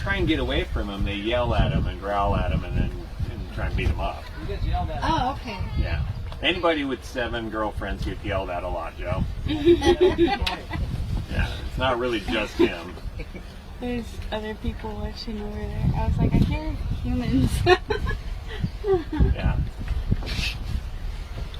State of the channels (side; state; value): both; identical; correlation 1.00